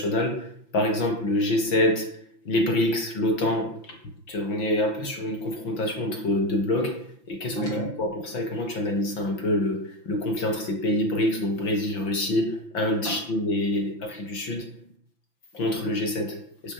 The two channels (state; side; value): late; right; 5.9 ms